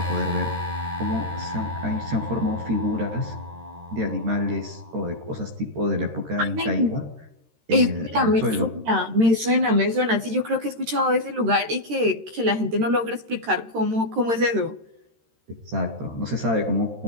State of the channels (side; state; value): left; late; 13 ms